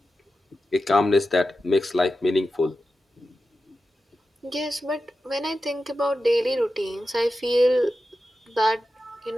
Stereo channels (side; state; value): both; normal; correlation 0.92